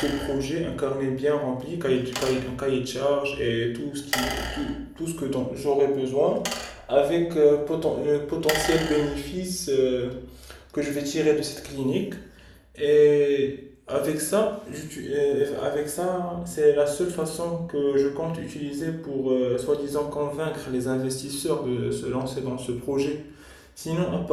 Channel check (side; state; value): both; identical; correlation 1.00